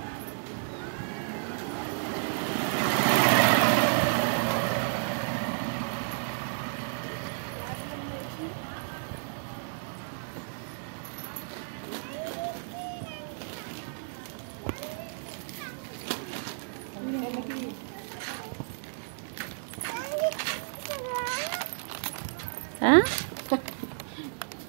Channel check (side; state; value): left; silent; digital silence